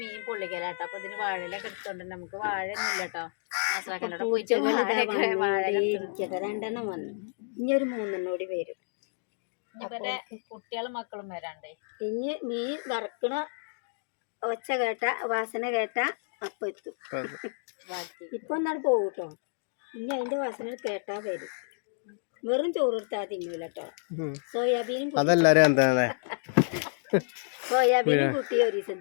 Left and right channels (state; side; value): silent; right; digital silence